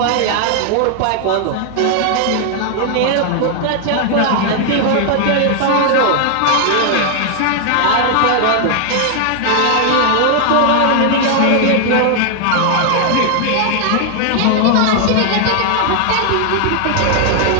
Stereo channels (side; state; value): both; different; correlation 0.00